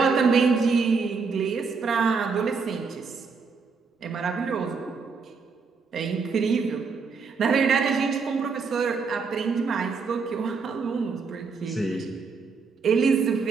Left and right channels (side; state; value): left; quieter; 5.1 dB